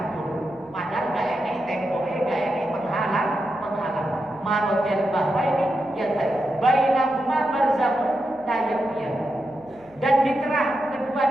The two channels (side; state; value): right; noise; hum, 29 dB below the sound